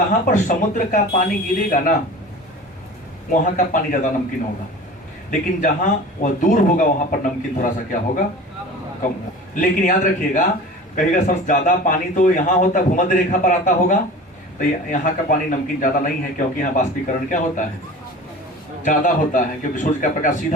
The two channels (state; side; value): normal; both; correlation 0.38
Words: पर समुद्र का पानी गिरेगा ना, वहां का पानी ज्यादा नमकीन होगा। लेकिन जहां वो दूर होगा वहां पर नमकीन थोड़ा सा क्या होगा? कम होगा। लेकिन याद रखिएगा, कहेगा सर ज्यादा पानी तो यहाँ होता, भूमध्य रेखा पर आता होगा, तो यहाँ का पानी नमकीन ज्यादा नहीं है, क्योंकि यहाँ बाष्पीकरण क्या होता है? ज्यादा होता है, क्योंकि सूर्य का प्रकाश